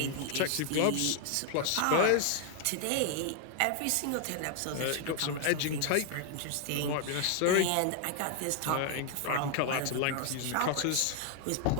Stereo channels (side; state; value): both; different; correlation 0.00